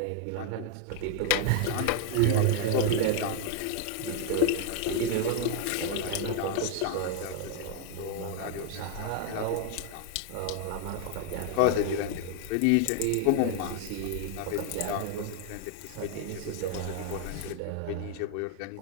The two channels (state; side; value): different; both; correlation 0.00